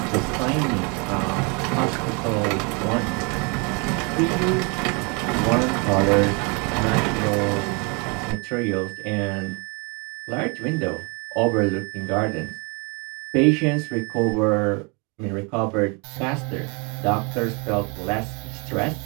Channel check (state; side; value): quieter; left; 31.9 dB